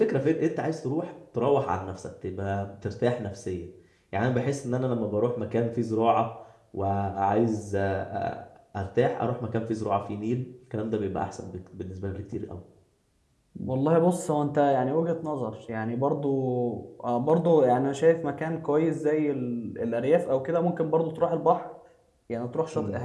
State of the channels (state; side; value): identical; both; correlation 1.00